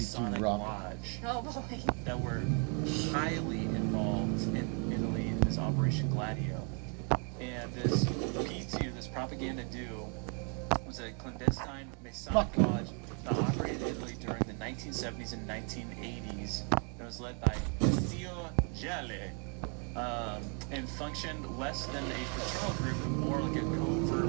Rock. Lodge, Oh boy. that were highly involved in Italy in this Operation Gladio. And this P2, this Propaganda Dude, was a clandestine Masonic lodge that operated in Italy during the 1970s and 1980s. It was led by Zio Gelli, and functioned less than a fraternal group, but more like a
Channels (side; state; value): left; quieter; 38.8 dB